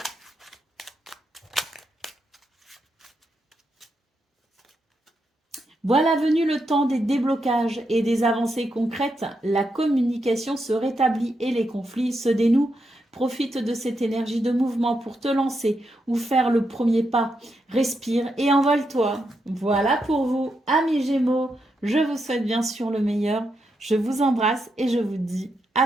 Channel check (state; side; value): normal; both; correlation 0.83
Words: Voilà venu le temps des déblocages et des avancées concrètes. La communication se rétablit et les conflits se dénouent. Profite de cette énergie de mouvement pour te lancer ou faire le premier pas. Respire et envole-toi. Voilà pour vous, amis Gémeaux. Je vous souhaite bien sûr le meilleur. Je vous embrasse et je vous dis à